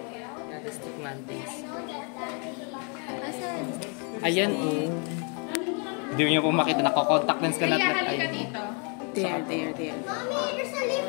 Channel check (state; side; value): quieter; right; 36.9 dB